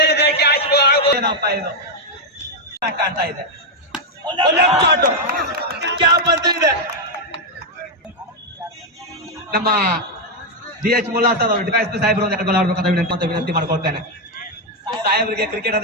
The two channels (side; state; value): both; normal; correlation 0.01